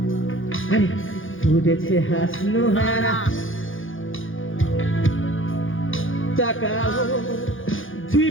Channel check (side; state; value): right; late; 0.58 ms